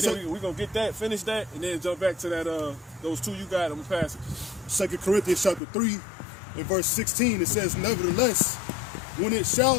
then we're going to get that, finish that, and then jump back to that, those two you got. I'm going to pass it. 2 Corinthians chapter 3 and verse 16, it says, "Nevertheless, when it shall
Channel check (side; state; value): right; drops out; at 5.6 s